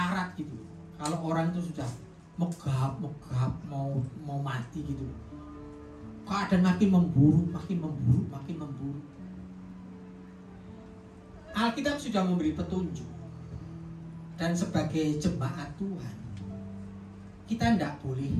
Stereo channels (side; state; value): both; identical; correlation 1.00